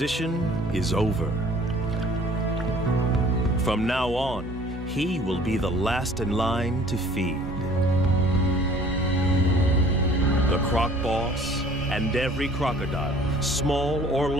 is over. From now on, he will be the last in line to feed. The croc boss and every crocodile, small or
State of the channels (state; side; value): normal; both; correlation 0.52